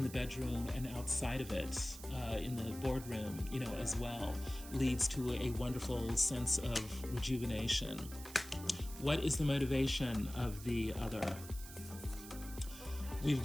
the bedroom and outside of it, in the boardroom, as well, leads to a wonderful sense of rejuvenation. What is the motivation of the other? We've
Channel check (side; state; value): right; noise; hiss, 14 dB below the sound